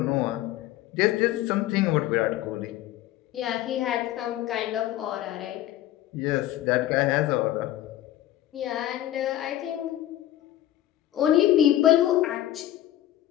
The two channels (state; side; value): quieter; right; 13.4 dB